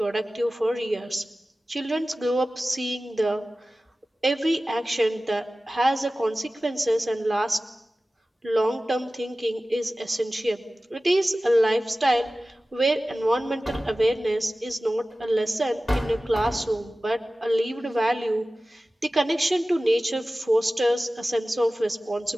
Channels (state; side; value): normal; both; correlation 0.96